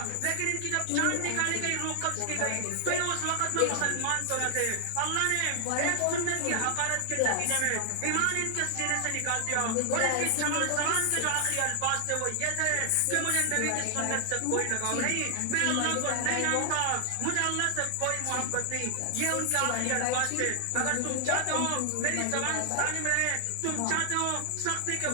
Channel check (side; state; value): both; different; correlation 0.00